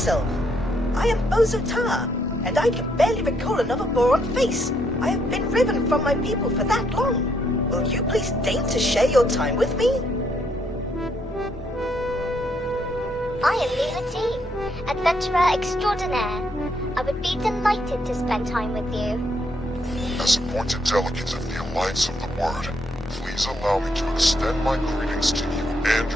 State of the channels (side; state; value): both; normal; correlation 0.73